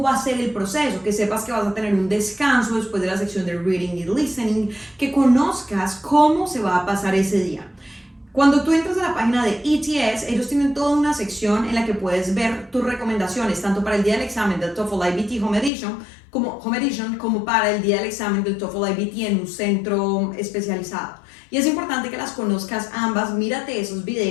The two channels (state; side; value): drops out; right; at 15.7 s